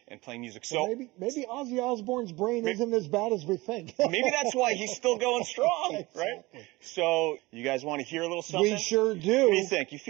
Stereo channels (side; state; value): left; quieter; 21.6 dB